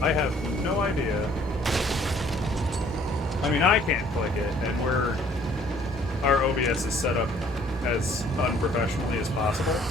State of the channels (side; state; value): both; normal; correlation 0.59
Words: I have no idea. I mean, I can't click it, and our OBS is set up as unprofessionally as possible.